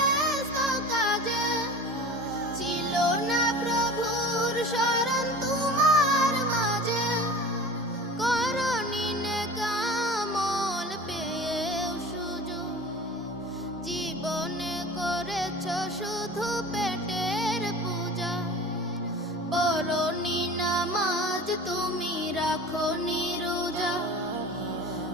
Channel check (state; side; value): normal; both; correlation 0.38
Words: কাজে ছিল না প্রভুর শরণ তোমার মাঝে করনি নেক আমল পেয়েও সুযোগ জীবনে করেছ শুধু পেটের পূজা পড়নি নামাজ তুমি রাখো রোজা